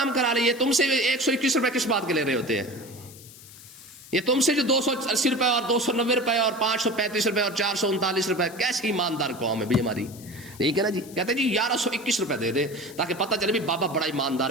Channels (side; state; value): left; noise; hiss, 19 dB below the sound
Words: کرا لیے. تم سے 121 روپے کس بات کے لے رہے ہوتے ہیں؟ یہ تم سے جو 280 روپے اور 290 روپے اور 535 روپے اور 439 روپے, کیسی ایماندار قوم ہے بھئی ہماری. ٹھیک ہے نا جی. کہتے ہیں جی 1121 روپے دے دے تاکہ پتہ چلے بھی بابا بڑا ایماندار